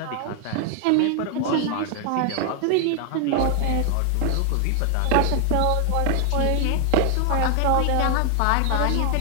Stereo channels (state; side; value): different; both; correlation 0.00